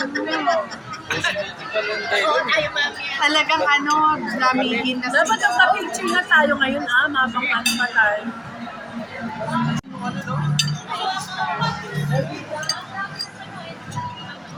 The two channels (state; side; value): identical; both; correlation 1.00